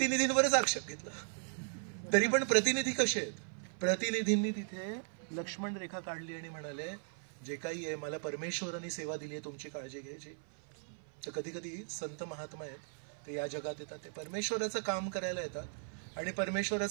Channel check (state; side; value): silent; left; 53 dB below the other